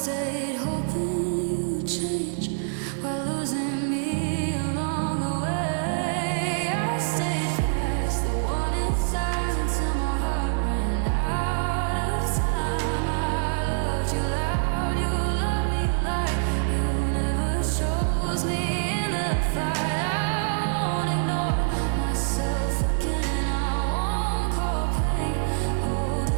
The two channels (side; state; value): left; silent; digital silence